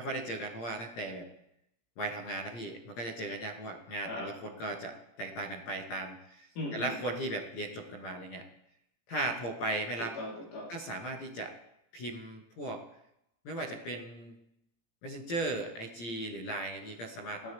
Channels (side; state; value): right; late; 18 ms